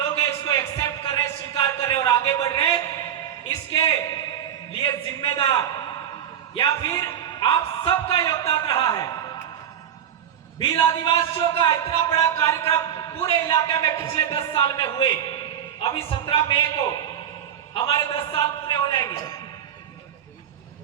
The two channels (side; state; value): left; quieter; 9.5 dB